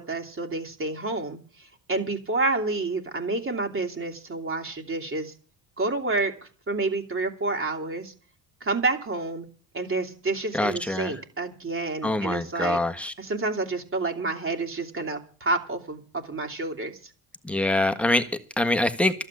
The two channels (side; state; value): both; normal; correlation 0.26